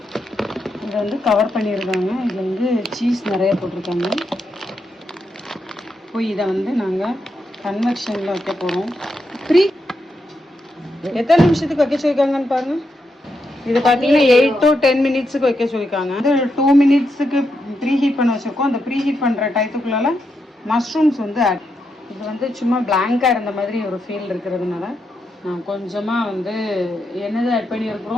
இதை வந்து கவர் பண்ணியிருக்காங்க. இதில் வந்து சீஸ் நிறைய போட்டிருக்காங்க. போய் இதை வந்து நாங்கள் கன்வெக்ஷனில் வைக்க போகிறோம். எத்தனை நிமிஷத்துக்கு வைக்க சொல்லியிருக்காங்கன்னு பாருங்கள். இது பார்த்தீங்கன்னா 8 to 10 மினிட்ஸுக்கு வைக்க சொல்லியிருக்காங்க. அது 2 மினிட்ஸுக்கு ப்ரீ ஹீட் பண்ண வச்சுருக்கோம். அந்த ப்ரீ ஹீட் பண்ணுற டயத்துக்குள்ளால மஷ்ரூம்ஸ் வந்து ஆட். இது வந்து சும்மா பிளாங்காக இருந்த மாதிரி ஒரு ஃபீல் இருக்கிறதுனால கொஞ்சமாக வந்து என்னது ஆட்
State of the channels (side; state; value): both; normal; correlation 0.83